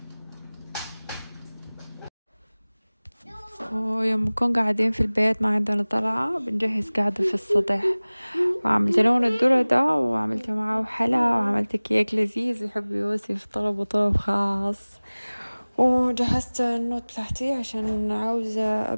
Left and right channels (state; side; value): inverted; both; correlation -1.00